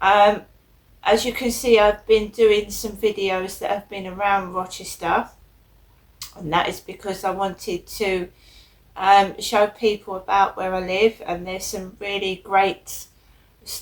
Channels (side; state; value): both; identical; correlation 1.00